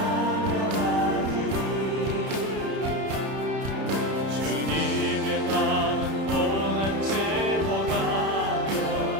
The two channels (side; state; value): left; late; 31 ms